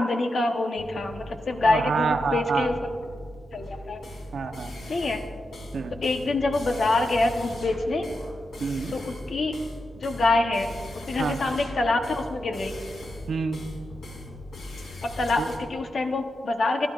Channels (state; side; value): normal; both; correlation 0.87